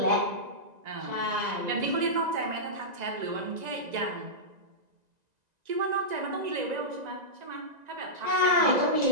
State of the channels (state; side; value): late; left; 1.9 ms